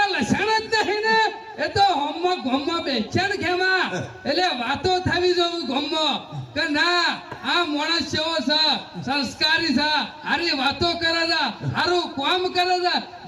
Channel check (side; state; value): both; identical; correlation 1.00